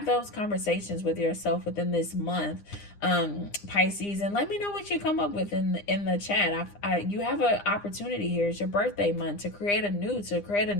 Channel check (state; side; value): late; right; 9.9 ms